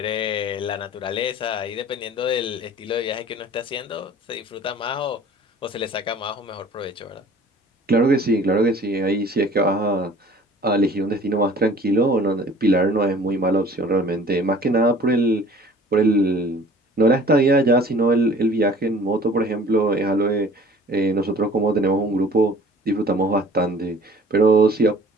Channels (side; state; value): both; normal; correlation 0.48